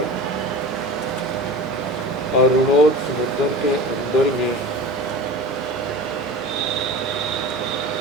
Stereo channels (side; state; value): both; normal; correlation 0.34